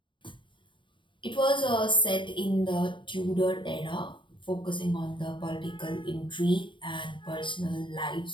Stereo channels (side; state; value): right; late; 0.23 ms